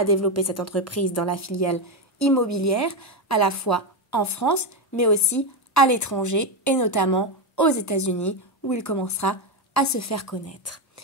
développer cette entreprise dans la filiale immobilière, à la fois en France, mais aussi à l'étranger, et notamment aux États-Unis, où il commencera à se faire connaître.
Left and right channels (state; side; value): normal; both; correlation 0.10